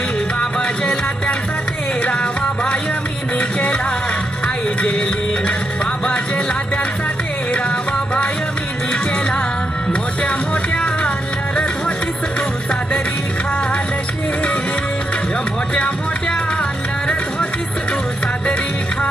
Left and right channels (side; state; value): both; normal; correlation 0.82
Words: बाबा जेला त्यांचा 13वा भाय मीनी केला. आई जेली बाबा जेला त्यांचा 13वा भाय मीनी केला. मोठ्या मोठ्या लढत होतीस तू सादरी खालशी. मोठ्या मोठ्या लढत होतीस तू सादरी